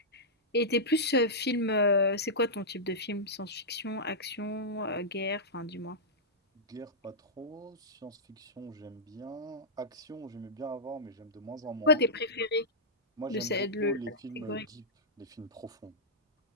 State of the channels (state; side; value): normal; both; correlation -0.11